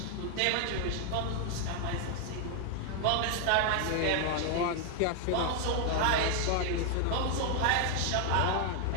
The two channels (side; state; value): both; different; correlation 0.00